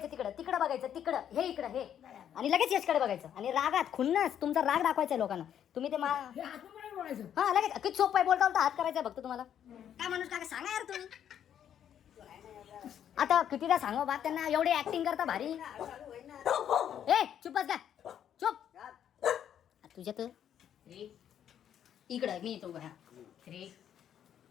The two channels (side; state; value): right; quieter; 9.6 dB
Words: तिकडं बघायचं. तिकडं हे इकडं हे आणि लगेच यशकडे बघायचं. आणि रागात खुन्नस तुमचा राग दाखवायचा लोकांना. तुम्ही ते हां लगेच किती सोपं आहे. बोलता हात करायचा फक्त तुम्हाला. काय माणूस काय सांगा यार तुम्ही. आता कितीदा सांगा बात त्यांना. एवढे ऍक्टिंग करता भारी. ए चुप बस का. चुप तुझ्या तर इकडं मी येतो. हा 3